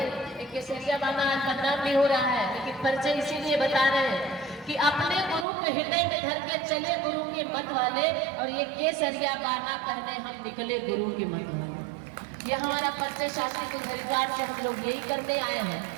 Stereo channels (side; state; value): left; drops out; at 5.5 s